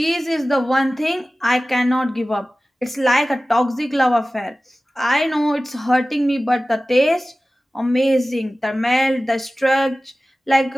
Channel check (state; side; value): normal; both; correlation 0.96